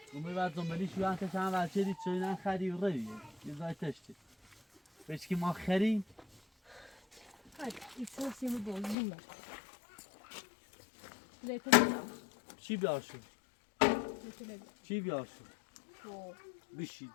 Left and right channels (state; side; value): drops out; right; at 9.0 s